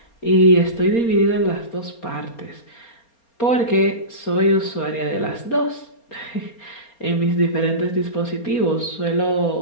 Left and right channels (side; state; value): right; late; 4.3 ms